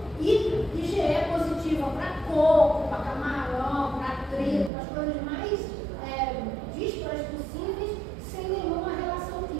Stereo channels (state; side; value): drops out; left; at 4.7 s